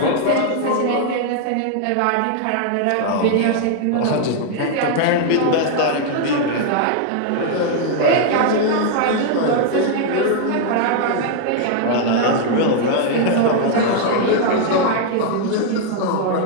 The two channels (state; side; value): different; both; correlation 0.00